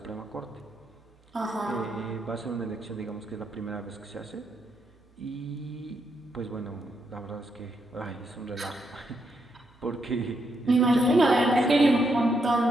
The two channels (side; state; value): both; normal; correlation 0.79